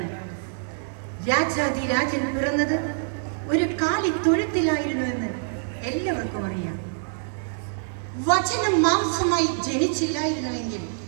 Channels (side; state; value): left; silent; digital silence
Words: രാജാതിരാജൻ പിറന്നത് ഒരു കാലിത്തൊഴുത്തിലായിരുന്നുവെന്ന് എല്ലാവർക്കും അറിയാം. വചനം മാംസമായി ജനിച്ചില്ലായിരുന്നുവെങ്കിൽ